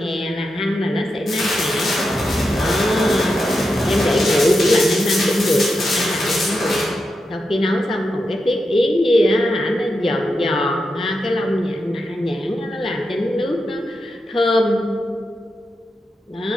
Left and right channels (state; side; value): normal; both; correlation 0.87